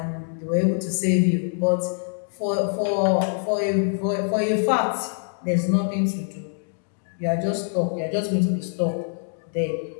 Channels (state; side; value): silent; right; digital silence